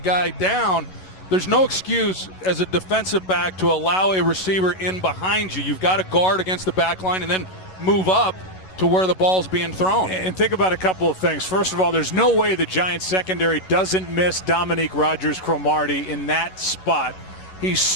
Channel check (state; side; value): late; right; 11 ms